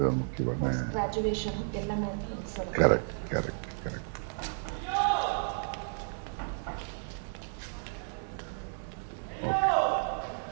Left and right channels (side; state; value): left; silent; 56 dB below the other